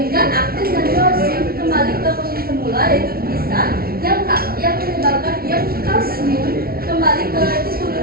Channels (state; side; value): late; left; 0.44 ms